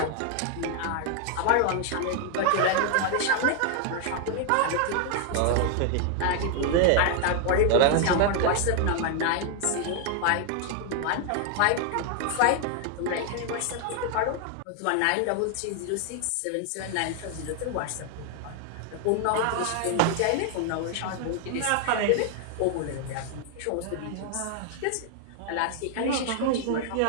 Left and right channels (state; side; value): different; both; correlation 0.00